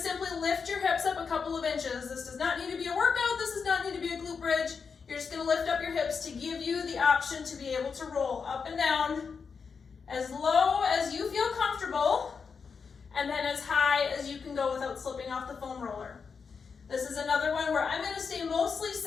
lift your hips up a couple of inches. This does not need to be a workout, this does not need to be a glute bridge. You're just gonna lift up your hips to give you the option to be able to roll up and down as low as you feel comfortable, and then as high as you can go without slipping off the foam roller. This is another one where I'm gonna stay mostly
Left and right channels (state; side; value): quieter; right; 5.6 dB